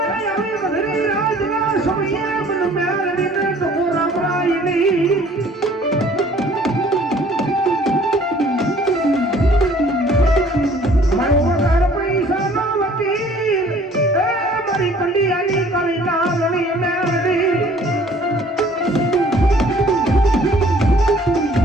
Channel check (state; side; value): normal; both; correlation 0.55